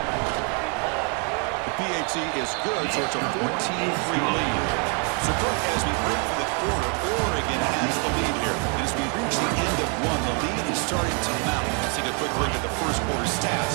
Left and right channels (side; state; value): left; quieter; 37.5 dB